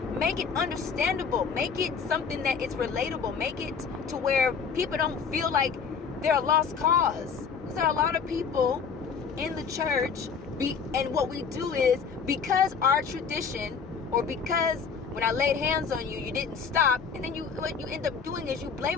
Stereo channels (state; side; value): quieter; right; 6.0 dB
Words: make it understandable, make it something that is relatable, make it to where people don't feel like they're a lost cause. Because there are a lot of people in the church, and what we do is, because our tradition, or because when I laid hands on you, you didn't stop, and then what you end up doing is you